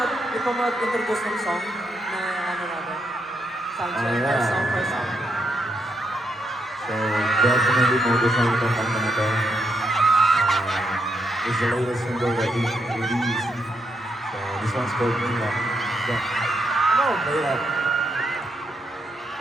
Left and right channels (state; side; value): normal; both; correlation 0.80